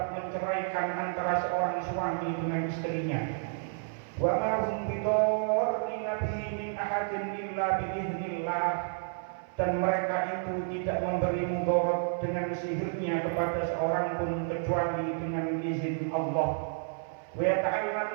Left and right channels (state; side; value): silent; left; 56 dB below the other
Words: menceraikan antara seorang suami dengan istrinya wa ma hum bidarrina bihi min ahadin illa biiznillah dan mereka itu tidak memberi mudarat dengan sihirnya kepada seorang pun kecuali dengan izin Allah wa